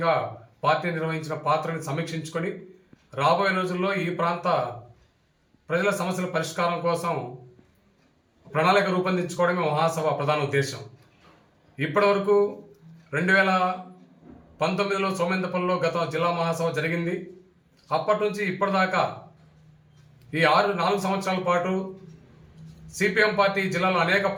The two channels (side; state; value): both; identical; correlation 1.00